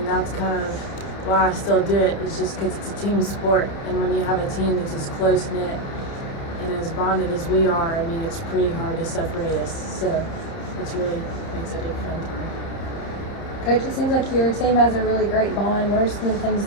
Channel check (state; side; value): late; right; 30 ms